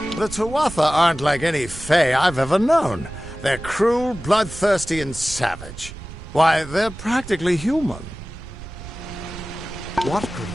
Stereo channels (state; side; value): noise; right; rumble, 13 dB below the sound